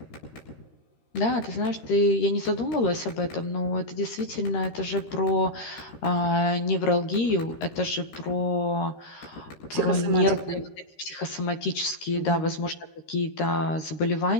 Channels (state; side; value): late; right; 13 ms